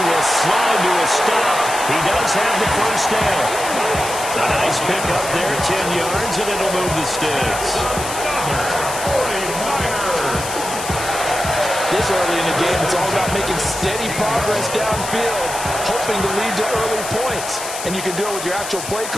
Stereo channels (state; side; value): noise; left; hiss, 8 dB below the sound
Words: will slide to a stop. He does have the first down. A nice pick up there, 10 yards, and it'll move the sticks. This early in the game, it's all about making steady progress downfield, hoping to lead to early points. And you can do it with your actual play